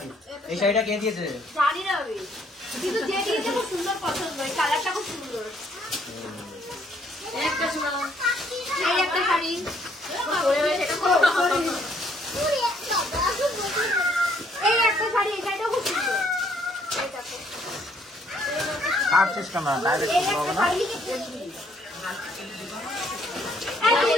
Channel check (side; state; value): both; normal; correlation 0.66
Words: এই শাড়িটা কে দিয়েছে? জানি না আমি, কিন্তু যে দিয়েছে খুব সুন্দর পছন্দ, এই কালারটা খুব সুন্দর। একটা শোনাও, এই একটা শাড়ি। এই একটা শাড়ি, এই শাড়িটাও খুব সুন্দর। এই দেখো, আর সিস্টেম না, ডাইরেক্ট এই একটা শাড়ি। এই